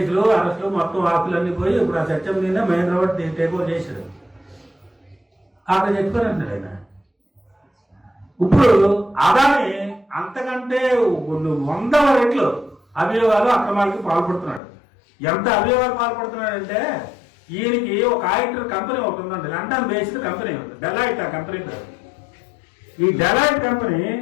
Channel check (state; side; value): drops out; right; at 14.6 s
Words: అరెస్టులు, మొత్తం ఆస్తులన్నీ పోయి ఇప్పుడు ఆ సత్యం మీద మహేంద్ర రెడ్డి టేక్ ఓవర్ చేశాడు. అక్కడ చెప్పారంటున్నాడు ఆయన. ఇప్పుడు అదాని అంతకంటే 100 రెట్లు అభియోగాలు అక్రమాలకి పాల్పడుతున్నాడు. ఎంత అభియోగాలు పాల్పడుతున్నాడంటే ఈయనకి ఒక ఆడిటర్ కంపెనీ ఒకటి ఉందండి, లండన్ బేస్డ్ కంపెనీ ఉంది, డెలాయిట్. ఆ కంపెనీ పేరు. ఈ డెలాయిట్ కంపెనీ